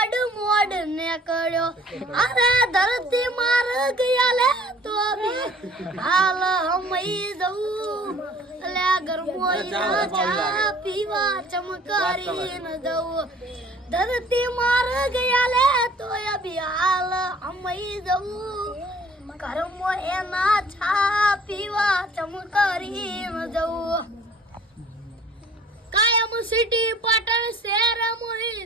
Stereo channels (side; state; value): both; normal; correlation 0.53